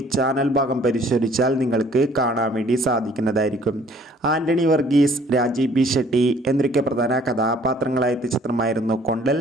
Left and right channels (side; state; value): both; normal; correlation 0.57